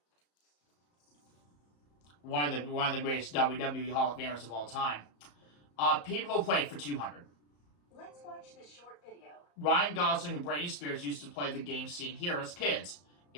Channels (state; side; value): late; right; 34 ms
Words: One of the greatest WWE Hall of Famers of all time. People who played for 200. Let's watch this short video. Ryan Gosling and Britney Spears used to play the game seen here as kids.